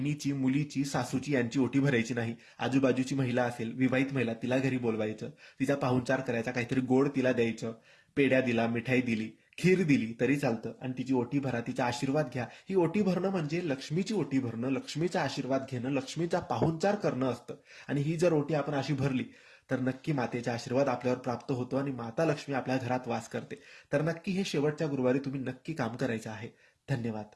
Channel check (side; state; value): both; identical; correlation 1.00